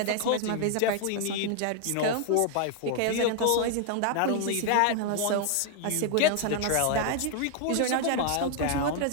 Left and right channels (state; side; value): different; both; correlation 0.00